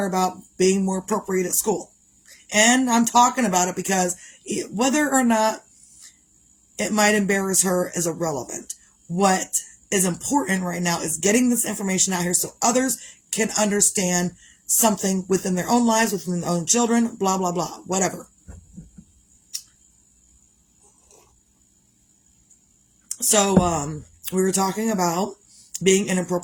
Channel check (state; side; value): identical; both; correlation 1.00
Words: about being more appropriate at school. And I'm talking about it because whether or not it might embarrass her is irrelevant. What is important right now is getting this information out here so others can understand something within their own lives, within their own children, blah, blah, blah, whatever. So, we were talking about being